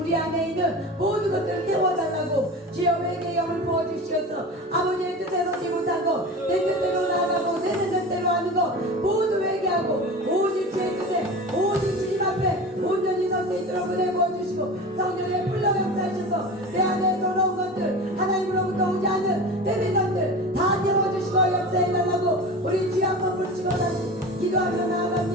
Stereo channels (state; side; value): normal; both; correlation 0.32